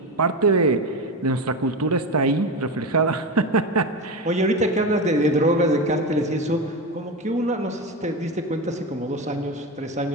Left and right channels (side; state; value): both; normal; correlation 0.20